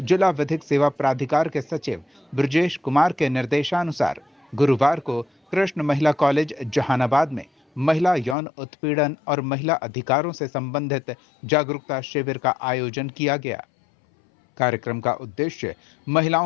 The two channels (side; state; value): right; drops out; at 8.3 s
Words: जिला विधिक सेवा प्राधिकार के सचिव ब्रजेश कुमार के निर्देशानुसार गुरुवार को कृष्ण महिला कॉलेज जहानाबाद में महिला यौन उत्पीड़न और महिला अधिकारों से संबंधित जागरूकता शिविर का आयोजन किया गया। कार्यक्रम का उद्देश्य